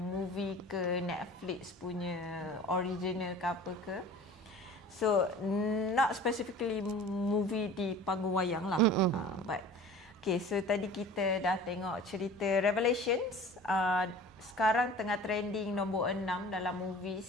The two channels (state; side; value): normal; both; correlation 0.42